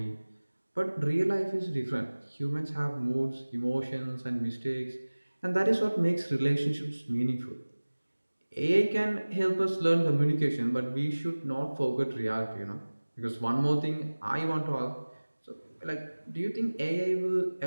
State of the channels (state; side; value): inverted; both; correlation -1.00